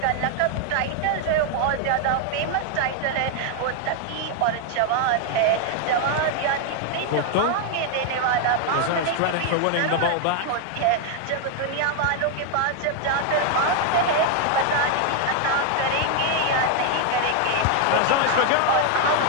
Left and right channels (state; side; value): different; both; correlation 0.00